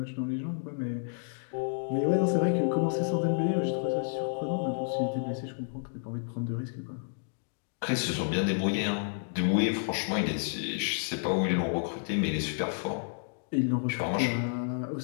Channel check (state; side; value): silent; right; digital silence